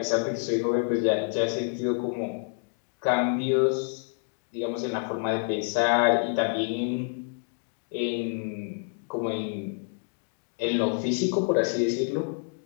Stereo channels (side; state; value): right; silent; 56 dB below the other